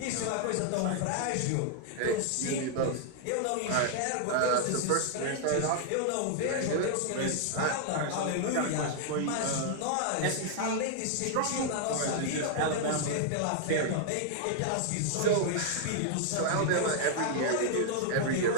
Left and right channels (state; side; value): different; both; correlation -0.01